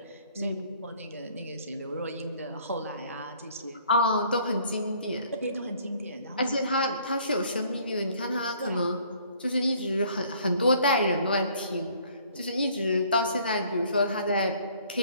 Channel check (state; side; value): inverted; both; correlation -0.59